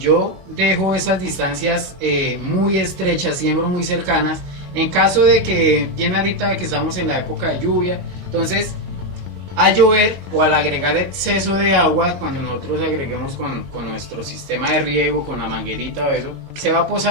dejo esas distancias muy estrechas, siembro muy cercanas, en caso de que, bien ahorita que estamos en la época de lluvia, entonces al llover o al agregar exceso de agua, cuando nosotros agreguemos con nuestro sistema de riego, con la manguerita o eso, se va a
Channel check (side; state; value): left; late; 22 ms